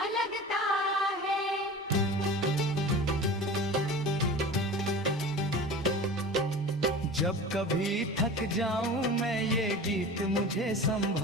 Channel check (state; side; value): normal; both; correlation 0.35